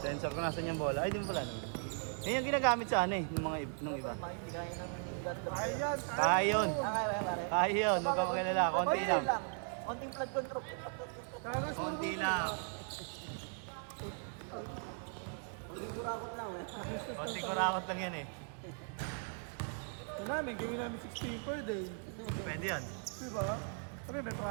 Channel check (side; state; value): left; silent; 52 dB below the other